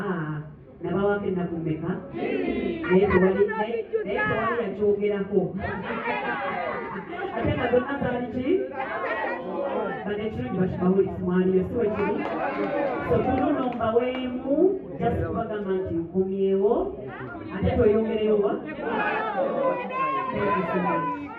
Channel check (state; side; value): identical; both; correlation 1.00